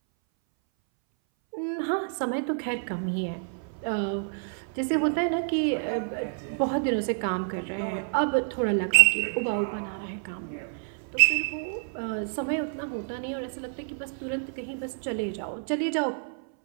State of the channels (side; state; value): left; silent; 59 dB below the other